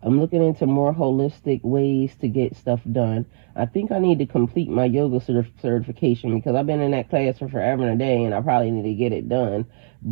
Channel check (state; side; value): silent; left; 65 dB below the other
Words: I'm looking into more holistic ways to get stuff done. I think I need to complete my yoga certification, because I've been in that class for forever and a day, and I probably need to get it done.